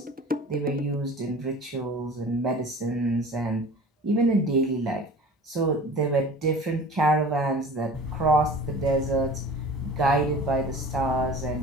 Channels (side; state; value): both; normal; correlation 0.41